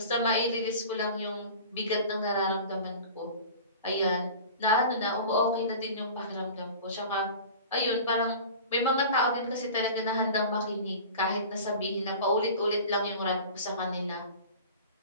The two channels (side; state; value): both; inverted; correlation -0.38